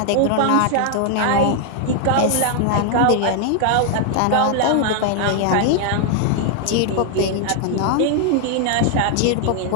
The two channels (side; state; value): both; different; correlation 0.00